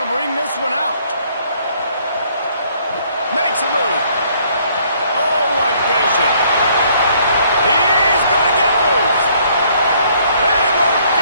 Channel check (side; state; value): both; inverted; correlation -0.64